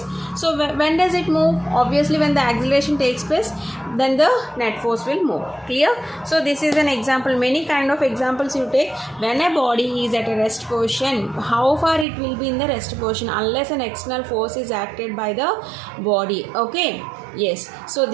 So when does it move? Obviously when the acceleration takes place, then the net force will move. Clear? So this is an example. Many kind of examples you take. When a body is at a rest position, how far it will be in the rest position unless an external force is acted by the body. Okay. Yes. So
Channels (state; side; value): drops out; left; at 12.1 s